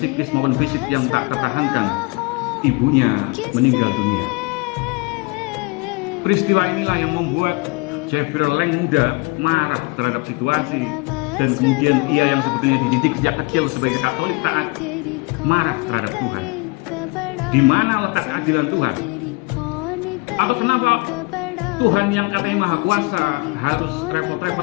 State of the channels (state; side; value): quieter; right; 28.1 dB